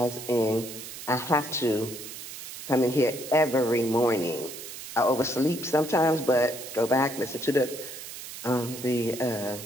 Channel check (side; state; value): right; noise; hiss, 11 dB below the sound